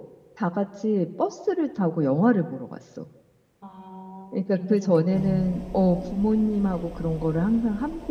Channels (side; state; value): both; identical; correlation 1.00